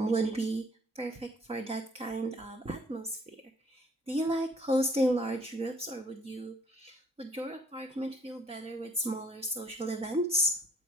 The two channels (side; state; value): both; normal; correlation 0.61